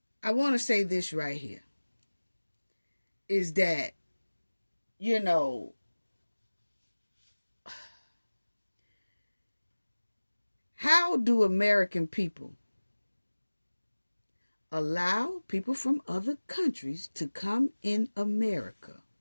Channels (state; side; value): inverted; both; correlation -1.00